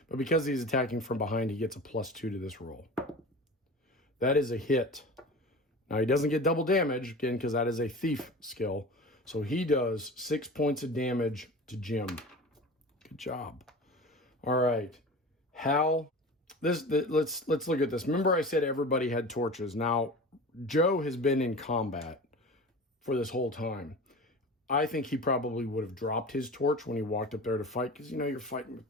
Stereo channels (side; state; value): both; normal; correlation 0.35